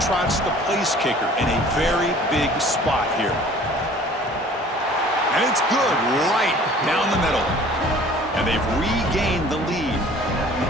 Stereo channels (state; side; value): normal; both; correlation 0.50